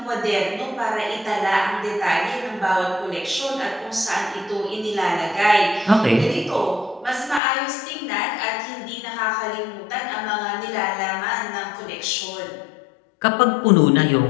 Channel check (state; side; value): drops out; right; at 7.4 s